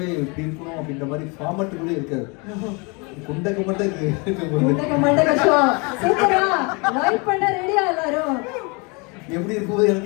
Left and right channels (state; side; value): quieter; right; 30.5 dB